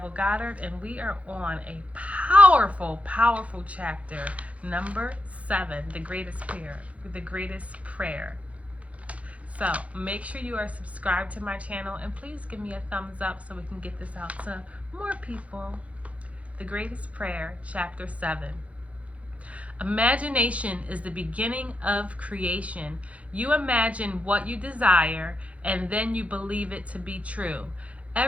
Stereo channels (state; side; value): late; left; 0.065 ms